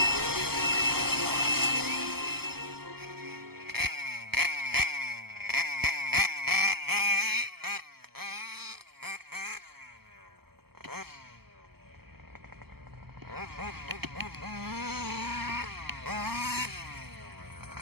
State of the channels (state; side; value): late; left; 0.96 ms